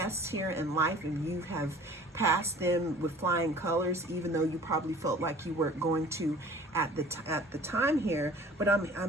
here in life, and you have passed them with flying colors, even though you probably felt like you weren't going to at the time here. But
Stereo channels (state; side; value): normal; both; correlation 0.47